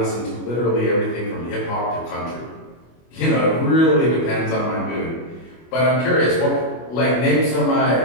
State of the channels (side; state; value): right; late; 25 ms